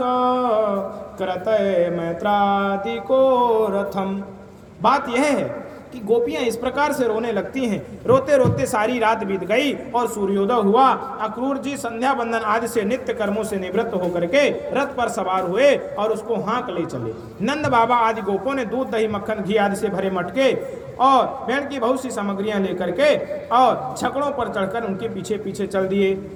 कृतय मैत्रादिको रथम। बात यह है कि गोपियां इस प्रकार से रोने लगती हैं। रोते रोते सारी रात बीत गई और सूर्योदय हुआ। अक्रूर जी संध्या बंदन आदि से नित्य कर्मों से निवृत्त होकर के रथ पर सवार हुए और उसको हाँक ले चले। नंद बाबा आदि गोपों ने दूध दही मक्खन घी आदि से भरे मटके और भेड़ की बहुत सी सामग्रियां लेकर के और छकड़ों पर चढ़कर उनके पीछे पीछे चल दिए।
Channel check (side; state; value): both; identical; correlation 1.00